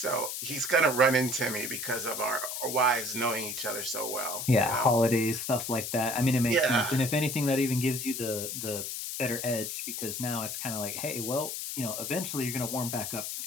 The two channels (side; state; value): left; noise; hiss, 5 dB below the sound